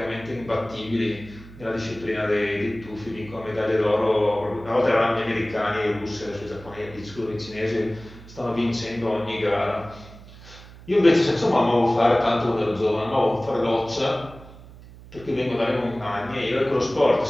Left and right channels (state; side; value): noise; right; hum, 19 dB below the sound